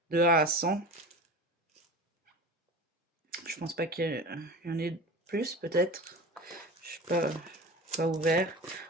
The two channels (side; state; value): both; normal; correlation 0.32